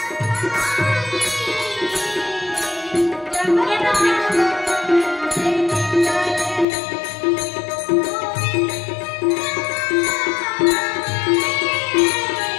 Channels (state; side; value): drops out; right; at 6.7 s